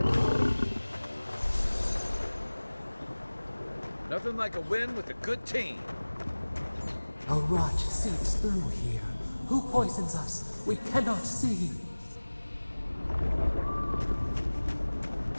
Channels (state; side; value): inverted; both; correlation -1.00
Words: Nothing like a win with a good team. A rot seeps through here. Who poisons us? We cannot see.